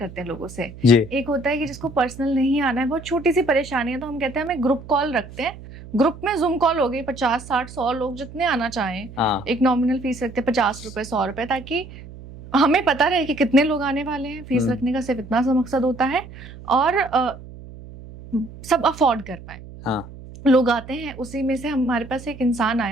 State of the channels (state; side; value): noise; right; hum, 16 dB below the sound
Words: हैं लोगों से। जी। एक होता है कि जिसको पर्सनल नहीं आना है, बहुत छोटी सी परेशानी है, तो हम कहते हैं हमें ग्रुप कॉल रखते हैं। ग्रुप में जूम कॉल हो गई, 50 60 100 लोग जितने आना चाहें। हाँ। एक नॉमिनल फीस रखते हैं, 50 रुपए 100 रुपए, ताकि हमें पता रहे कि कितने लोग आने वाले हैं। फीस रखने का सिर्फ इतना सा मकसद होता है, और सब अफोर्ड कर पाए। हाँ। लोग आते हैं, उसी में से हमारे पास एक इंसान